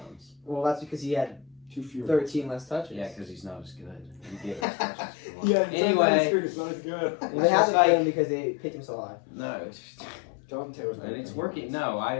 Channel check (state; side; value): drops out; right; at 4.7 s